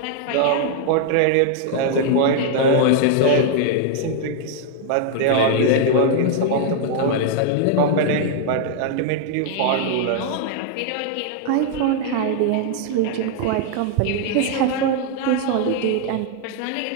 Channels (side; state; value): both; different; correlation 0.00